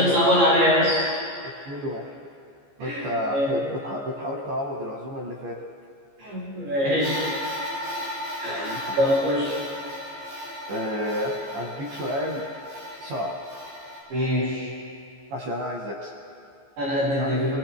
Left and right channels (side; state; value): left; late; 15 ms